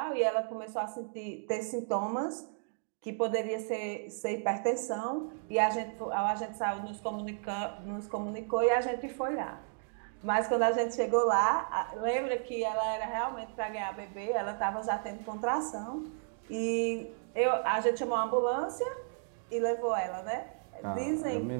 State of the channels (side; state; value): left; silent; digital silence